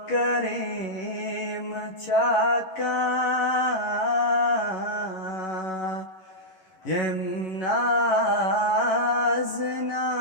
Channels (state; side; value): late; right; 11 ms